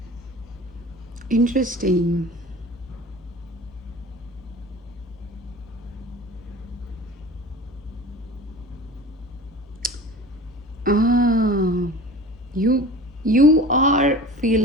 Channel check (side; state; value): both; normal; correlation 0.38